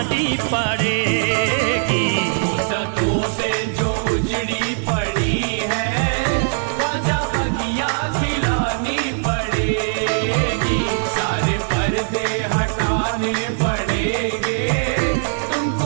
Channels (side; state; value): left; silent; 66 dB below the other